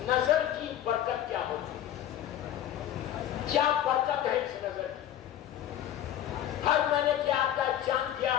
نظر کی برکت کیا ہوگی، کیا برکت ہے اس نظر کی. ہر مہینے کی 8 تاریخ، چاند کی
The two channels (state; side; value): quieter; right; 11.5 dB